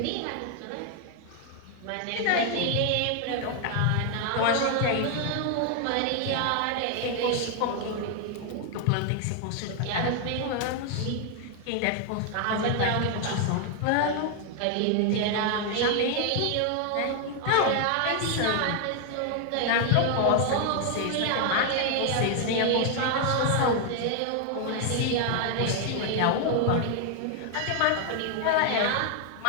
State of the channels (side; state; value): both; different; correlation 0.00